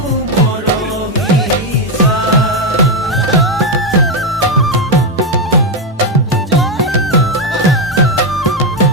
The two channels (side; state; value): both; normal; correlation 0.06